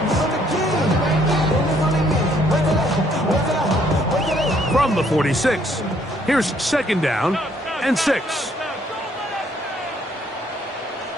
6. From the 46, here's second down and 6.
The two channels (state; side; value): normal; both; correlation 0.66